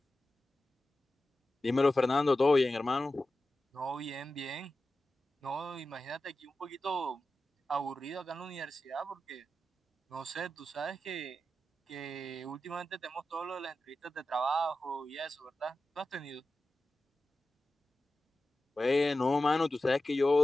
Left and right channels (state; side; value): normal; both; correlation 0.93